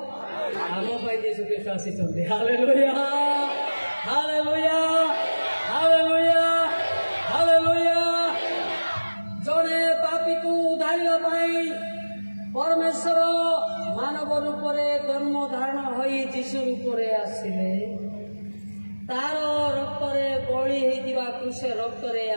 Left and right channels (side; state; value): both; inverted; correlation -1.00